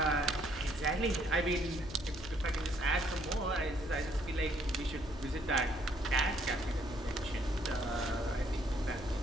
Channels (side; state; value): left; noise; hum, 14 dB below the sound